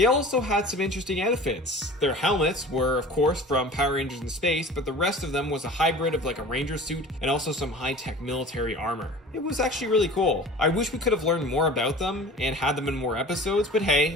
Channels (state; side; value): normal; both; correlation 0.41